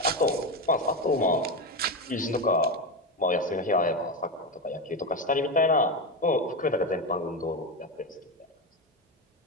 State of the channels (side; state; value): both; normal; correlation 0.15